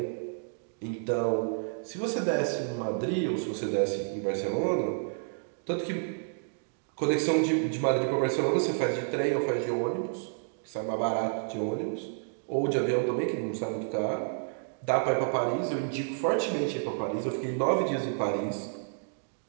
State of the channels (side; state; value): left; silent; digital silence